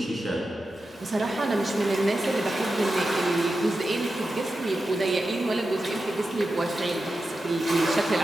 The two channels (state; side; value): normal; both; correlation 0.91